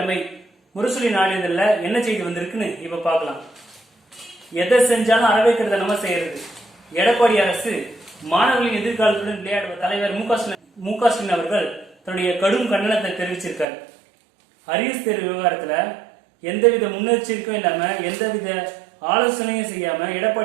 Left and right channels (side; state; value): left; drops out; at 13.7 s